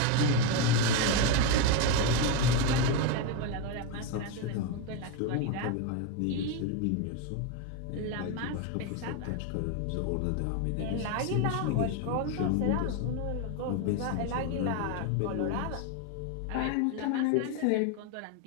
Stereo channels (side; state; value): both; different; correlation 0.02